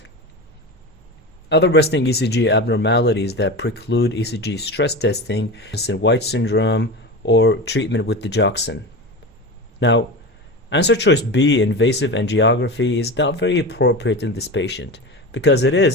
Other resting ECG abnormalities that preclude ECG stress testing is White syndrome or treatment with digoxin. Now, answer choice B, invasive angiography, is not very appropriate in this patient because it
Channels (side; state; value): both; normal; correlation 0.26